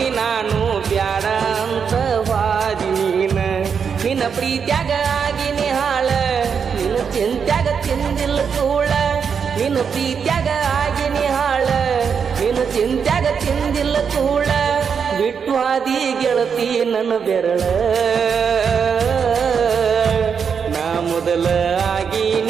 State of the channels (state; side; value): quieter; left; 6.6 dB